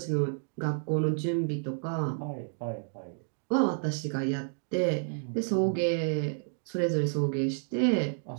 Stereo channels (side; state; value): left; silent; digital silence